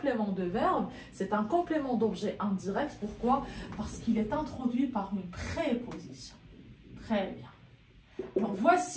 de verbe? C'est un complément d'objet indirect. Pourquoi? Parce qu'il est introduit par une préposition. Très bien. Alors,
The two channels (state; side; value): identical; both; correlation 1.00